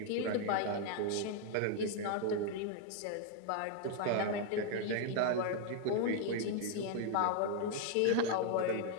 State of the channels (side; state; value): both; different; correlation 0.00